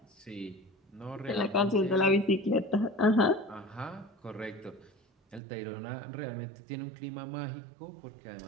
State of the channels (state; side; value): drops out; left; at 5.4 s